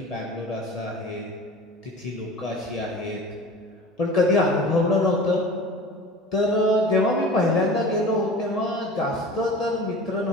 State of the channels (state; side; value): normal; both; correlation 0.38